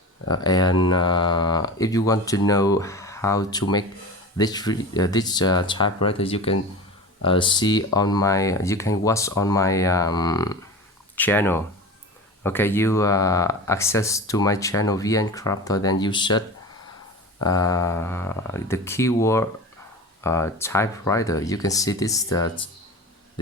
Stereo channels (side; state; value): both; normal; correlation 0.31